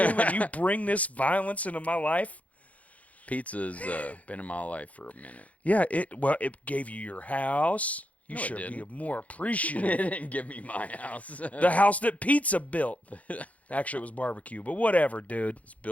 and you bring this violence into my life? pizza's been in my life for a minute. Yeah, it gave you your house. You No, it should be didn't. more It appreciative. didn't give me my house. The house that Pizza built. Actually, it was barbecue, but whatever, dude. It's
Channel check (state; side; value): late; right; 0.068 ms